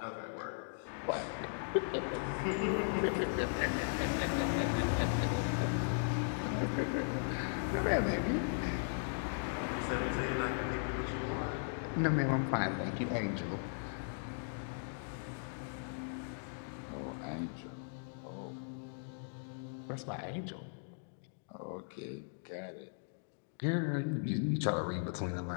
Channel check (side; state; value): right; silent; digital silence